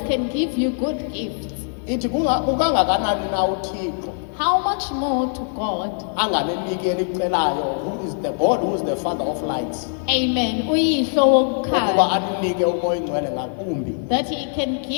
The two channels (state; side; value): silent; right; 64 dB below the other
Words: can give you good gifts. Ithi ukangakanani na uThixo how much more to God? anganeniki elicelayo, who is the God, who is the Father of lights, Amen. Uyihlo ukuba wokukhanya. aninike umoya oyingcwele ngakumbi. That He can